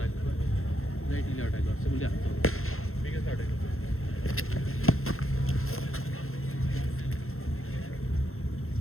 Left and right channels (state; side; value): late; right; 0.62 ms